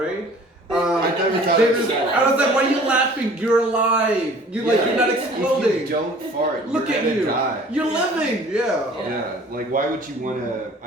I never thought They of just, that. I was like, why are you laughing? You're alive. You're like, you're not exploding. If you don't fart, Look you're at gonna you. die. You're living. Yeah. Yeah. Like, why would you want to?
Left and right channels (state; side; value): normal; both; correlation 0.50